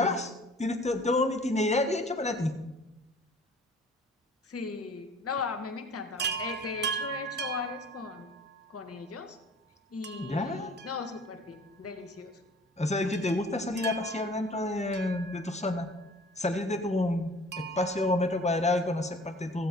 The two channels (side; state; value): both; normal; correlation 0.49